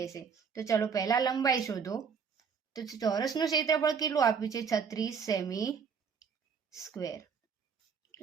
તો ચલો પહેલા લંબાઈ શોધો. તો ચોરસનું ક્ષેત્રફળ કેટલું આપ્યું છે? 36 સેમી સ્ક્વેર.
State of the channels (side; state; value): left; quieter; 6.3 dB